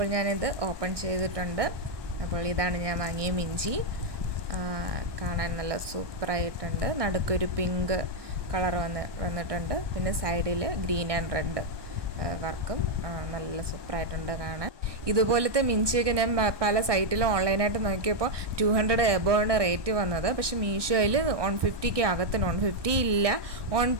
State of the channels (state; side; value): late; left; 1.2 ms